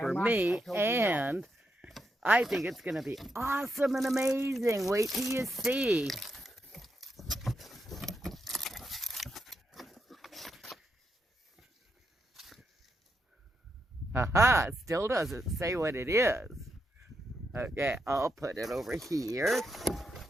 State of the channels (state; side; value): normal; both; correlation 0.83